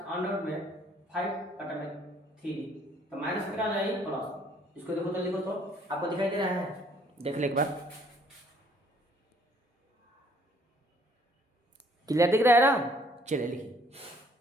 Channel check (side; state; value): both; normal; correlation 0.62